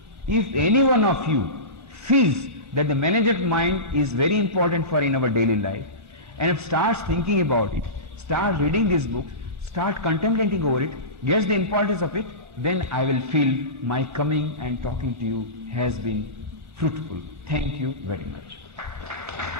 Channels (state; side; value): late; left; 1.4 ms